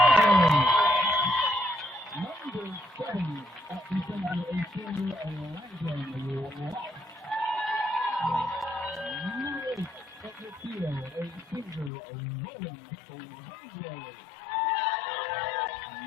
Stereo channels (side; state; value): right; drops out; at 11.9 s